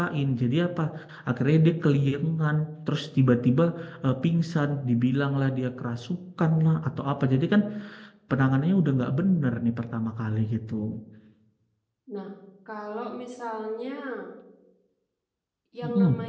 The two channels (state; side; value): identical; both; correlation 1.00